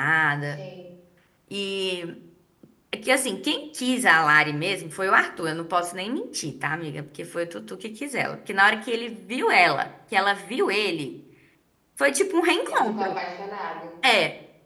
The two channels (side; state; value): both; identical; correlation 1.00